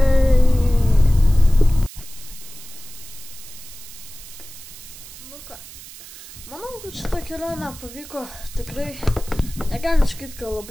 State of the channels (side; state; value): right; noise; hiss, 16 dB below the sound